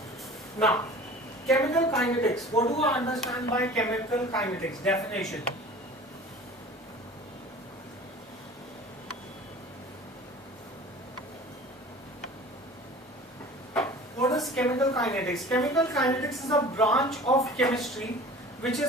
Now, chemical kinetics. What do I understand by chemical kinetics? Definition. What is chemical kinetics? Chemical kinetics is a branch of chemistry which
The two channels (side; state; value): both; normal; correlation 0.42